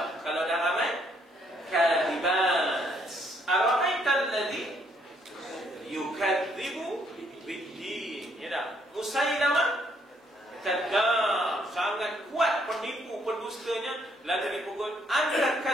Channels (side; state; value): both; normal; correlation 0.69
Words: Kalau dah ramai, kadhibat. Ara'aital ladzi yukadzibu bid-din. Ya dah. Musailamah kadzdzab, sangat kuat penipu pendustanya. Lalu dipukul anta